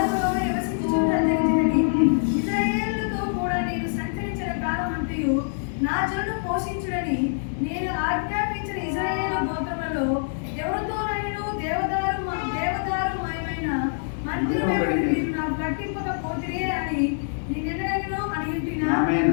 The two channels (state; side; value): silent; right; 62 dB below the other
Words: నివసించుచున్నది. ఇశ్రాయేలుతో కూడా నేను సంచరించిన కాలమంతయు నా జనులను పోషించుడని నేను ఆజ్ఞాపించిన ఇశ్రాయేలు గోత్రములలో ఎవరితోనైనా దేవదారుమయమైన మందిరము మీరు నాకు కట్టింపకపోతిరే అని నేనెన్నడూ అడిగినా. ఆమేన్,